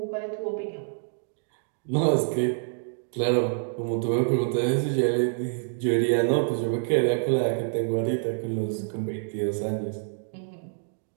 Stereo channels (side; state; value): left; silent; digital silence